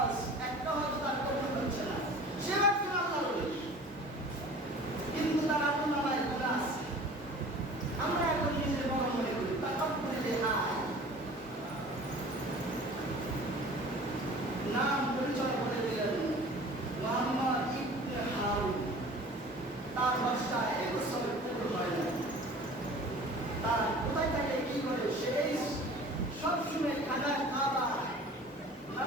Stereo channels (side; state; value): both; normal; correlation 0.44